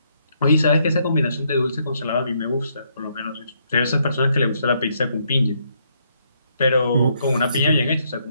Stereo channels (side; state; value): both; inverted; correlation -0.73